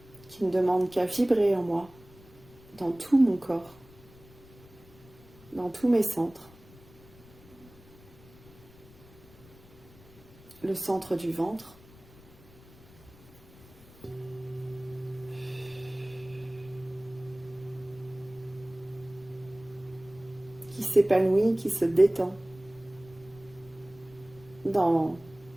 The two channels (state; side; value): noise; left; rumble, 23 dB below the sound